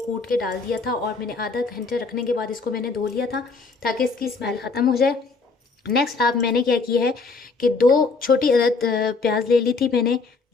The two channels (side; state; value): right; quieter; 4.2 dB